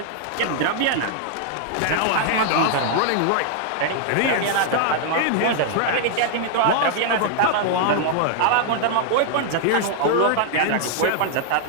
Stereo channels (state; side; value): different; both; correlation 0.00